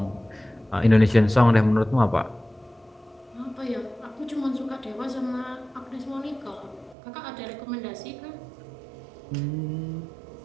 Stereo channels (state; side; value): drops out; left; at 7.0 s